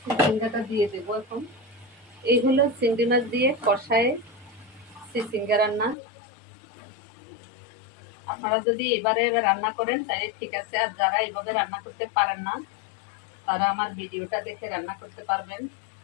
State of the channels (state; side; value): drops out; right; at 6.0 s